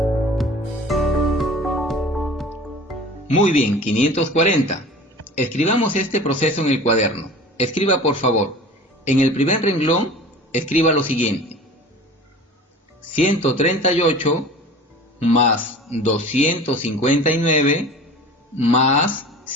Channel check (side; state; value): both; normal; correlation 0.40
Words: Muy bien, 540. Escribamos este proceso en el cuaderno. Escriba por favor. En el primer renglón, escriba lo siguiente. 138 más 259 más